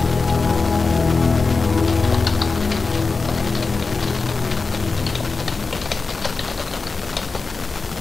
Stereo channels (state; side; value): quieter; right; 4.1 dB